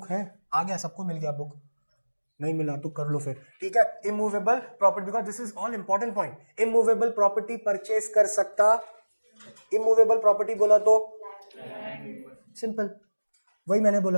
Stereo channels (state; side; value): inverted; both; correlation -1.00